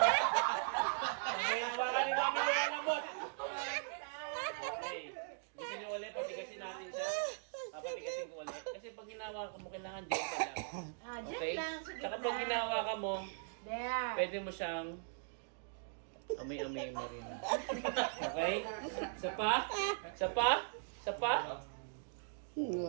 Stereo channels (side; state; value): left; silent; digital silence